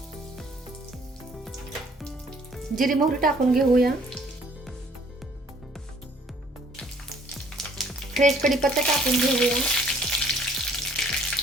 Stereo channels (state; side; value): normal; both; correlation 0.59